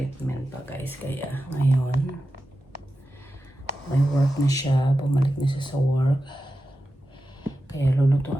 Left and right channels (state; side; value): normal; both; correlation 0.92